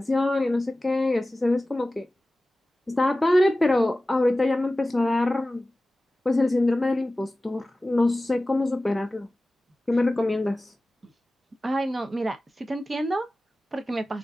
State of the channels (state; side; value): normal; both; correlation 0.96